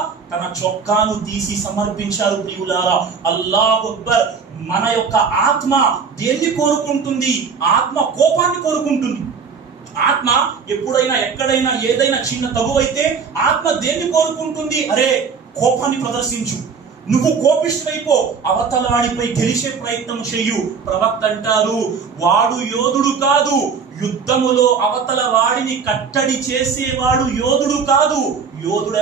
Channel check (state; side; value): quieter; left; 5.7 dB